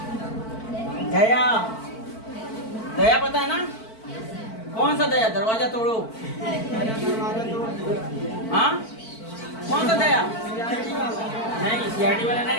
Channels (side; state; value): right; late; 4.5 ms